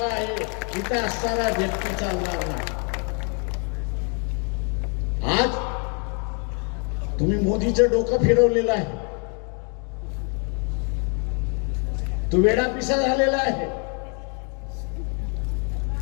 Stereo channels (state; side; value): quieter; right; 37.6 dB